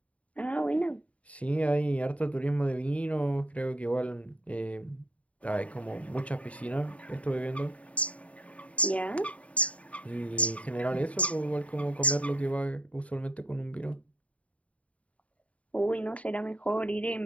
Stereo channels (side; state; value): right; late; 0.066 ms